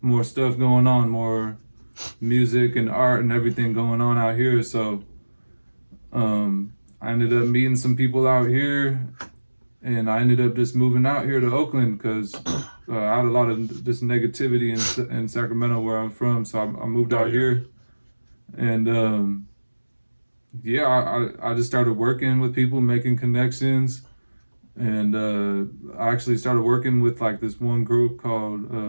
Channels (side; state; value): both; inverted; correlation -1.00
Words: stuff going on, more music and art and everything going on out here. So I ended up meeting some people out here, and I ended up just moving out here to Oakland because I had a lot of just negativity in Sacramento where I'm from. So I moved out here, and yeah, I just started working with people, making connections, and I actually started working with like this one group called